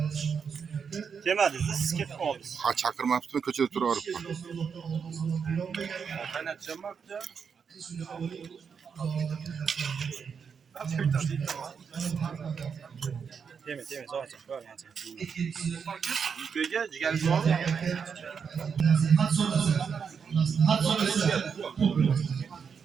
Kelmadi, siz ketib qoldingiz. Ha chaqirmabdi, ko'chada turaveribman. Qaynatacağım bakca. Deme, zo'rcha. Ko'r yancha. Yukaga jigar bor.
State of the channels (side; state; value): left; quieter; 6.4 dB